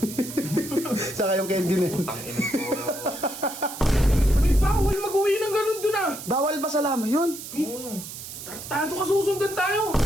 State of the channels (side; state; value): right; noise; hiss, 11 dB below the sound